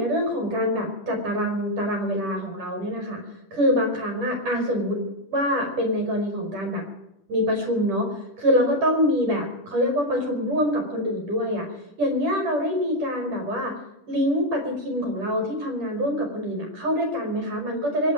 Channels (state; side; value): late; left; 10 ms